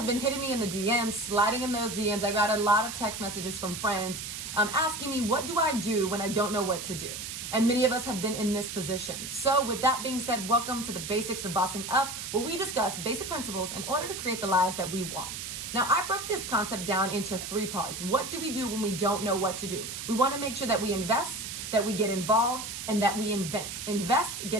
been hitting me in the DMs, sliding in those DMs. I got a lot of text messages from friends asking me, what do I do when I don't know what to do? And many of us have been in this position. So with that being said, welcome to the Basics of Bossing Up, where we discuss basic principles in order to create the lives that we want. Now, I broke this concept down into 3 parts. What do we do when we don't know what to do? We want to make sure that we invest, that we get involved, and that we invent. Invest,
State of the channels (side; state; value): right; noise; hiss, 7 dB below the sound